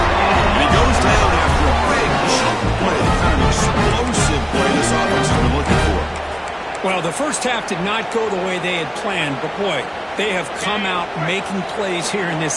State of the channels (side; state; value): both; identical; correlation 1.00